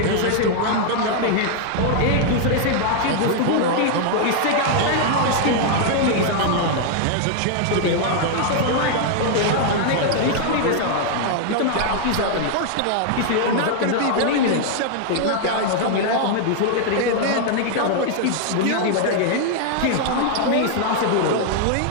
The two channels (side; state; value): both; different; correlation 0.00